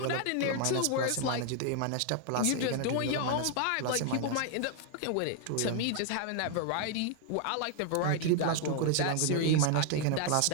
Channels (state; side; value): different; both; correlation 0.00